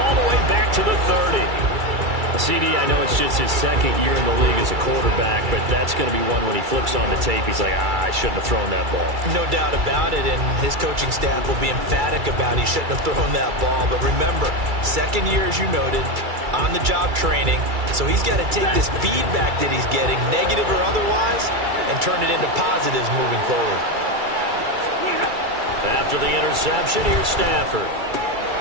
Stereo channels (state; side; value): late; left; 2.3 ms